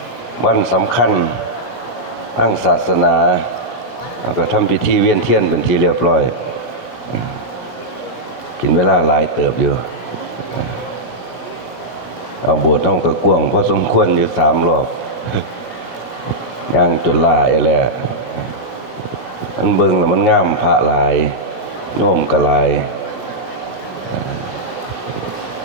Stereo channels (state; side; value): late; right; 17 ms